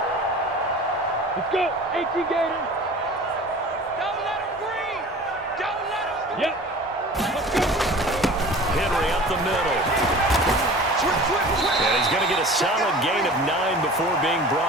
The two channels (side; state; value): both; normal; correlation 0.41